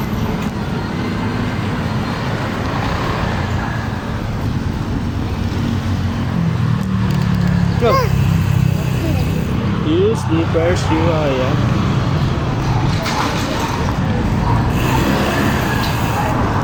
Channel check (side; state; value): both; identical; correlation 1.00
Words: Go. You sleepers, you are, yeah.